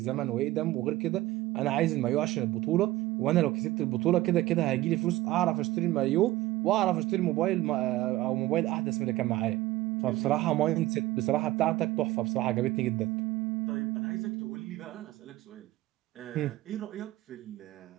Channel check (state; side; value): quieter; left; 16.9 dB